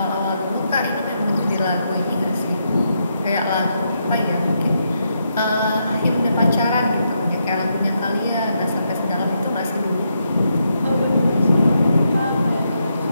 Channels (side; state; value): both; inverted; correlation -0.80